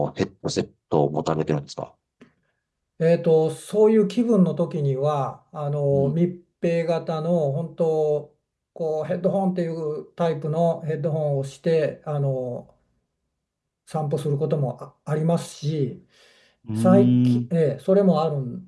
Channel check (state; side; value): identical; both; correlation 1.00